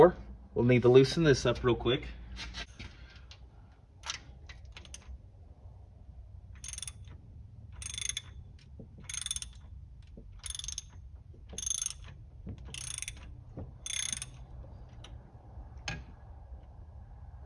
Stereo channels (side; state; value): both; identical; correlation 1.00